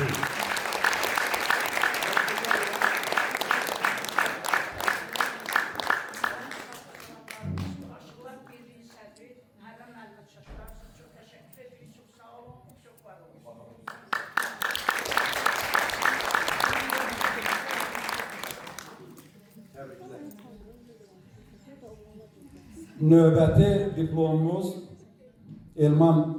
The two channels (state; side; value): identical; both; correlation 1.00